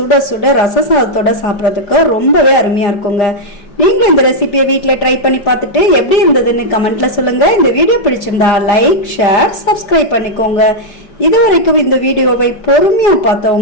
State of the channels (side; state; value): right; late; 4.9 ms